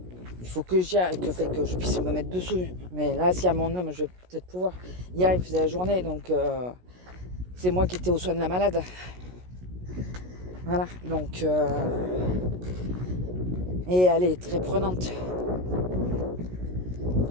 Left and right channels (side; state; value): left; late; 16 ms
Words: que je puisse me mettre dessus. Mais là, si à mon homme, je vais peut-être pouvoir. Hier, il faisait la journée, donc c'est moi qui étais aux soins de la malade. Voilà, donc et elle est très prenante.